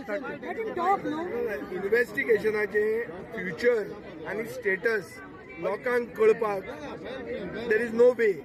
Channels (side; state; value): both; identical; correlation 1.00